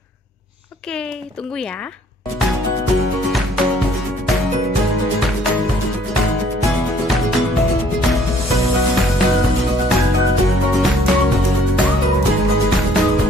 Oke, tunggu ya.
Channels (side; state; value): both; normal; correlation 0.61